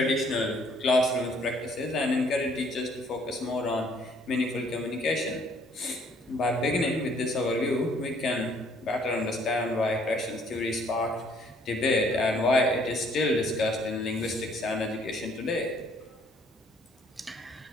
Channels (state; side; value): normal; both; correlation 0.62